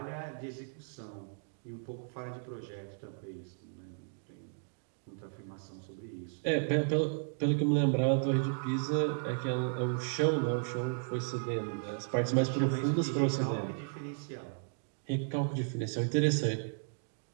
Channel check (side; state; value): left; silent; digital silence